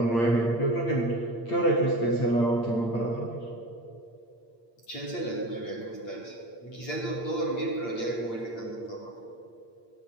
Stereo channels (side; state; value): right; late; 8.7 ms